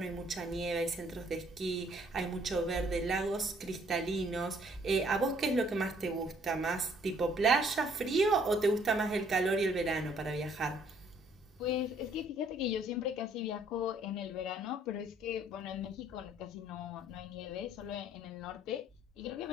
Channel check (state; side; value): normal; both; correlation 0.63